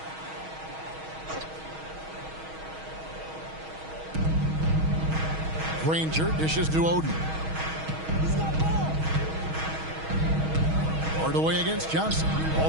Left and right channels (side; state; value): left; late; 6.3 ms